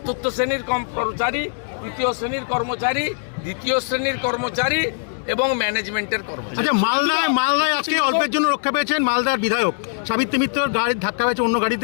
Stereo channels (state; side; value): silent; right; digital silence